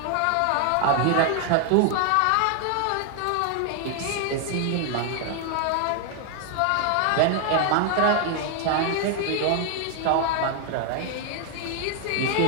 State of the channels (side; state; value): both; different; correlation 0.00